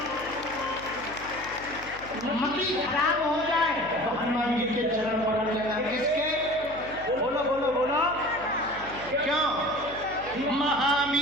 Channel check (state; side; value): noise; left; hum, 18 dB below the sound